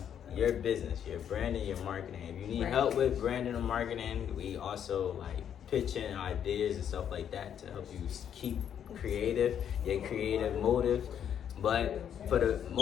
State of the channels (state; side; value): quieter; right; 9.0 dB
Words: your business, your branding, your marketing. If you need help with branding and marketing, we also like pitching ideas and stuff like that to help you keep creative, your creative motive. But for the